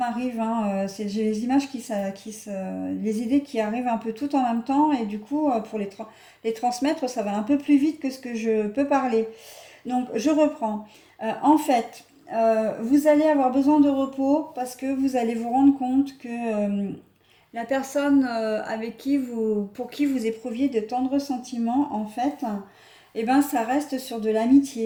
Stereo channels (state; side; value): identical; both; correlation 1.00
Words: hein, j'ai les images les idées qui arrivent un peu tout en même temps, et du coup, pour les transmettre, ça va un peu plus vite que ce que je peux parler. Donc, je reprends. En fait, vous allez avoir besoin de repos parce que vous allez vous rendre compte que la personne pour qui vous éprouviez de tendres sentiments, en fait, eh ben, ça reste sur de